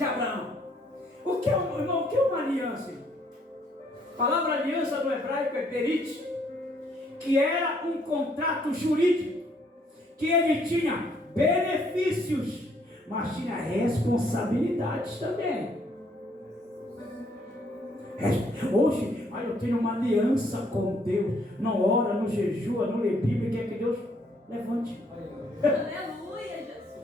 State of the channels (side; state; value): both; normal; correlation 0.67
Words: Abraão. O que é, irmão, o que é uma aliança? A palavra aliança no hebraico é berit, que era um contrato jurídico, que ele tinha benefícios, mas tinha responsabilidades também. Hoje, eu tenho uma aliança com Deus, não ora, não jejua, não lê Bíblia, quer que Deus levante. Aleluia,